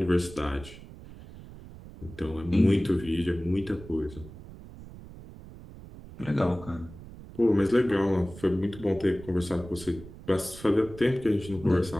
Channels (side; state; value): right; noise; rumble, 16 dB below the sound